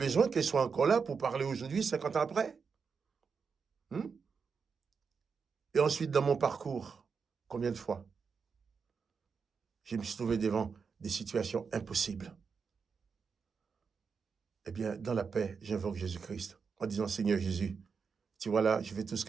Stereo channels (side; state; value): left; quieter; 5.6 dB